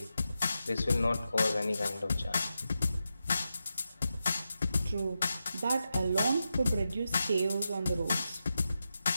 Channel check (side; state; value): both; inverted; correlation -0.89